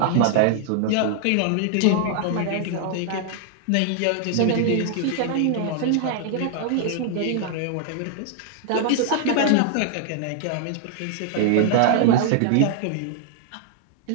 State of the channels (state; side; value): different; both; correlation 0.00